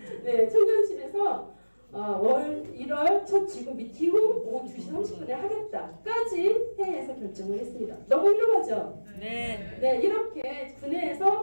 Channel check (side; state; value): both; inverted; correlation -1.00